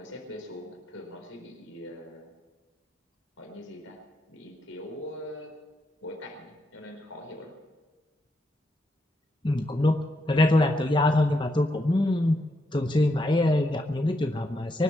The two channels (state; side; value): normal; both; correlation 0.80